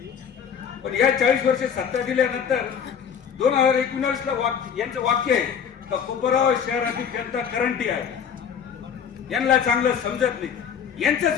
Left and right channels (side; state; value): right; quieter; 7.6 dB